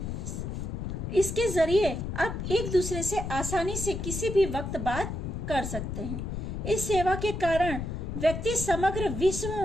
इसके जरिए आप एक दूसरे से आसानी से किसी भी वक्त बात कर सकते हैं। इस सेवा के कारण व्यक्ति समग्र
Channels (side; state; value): left; noise; rumble, 4 dB below the sound